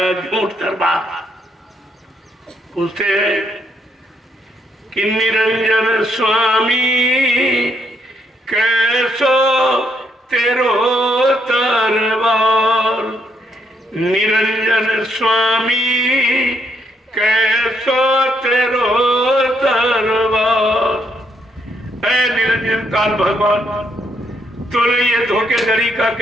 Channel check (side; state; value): both; normal; correlation 0.75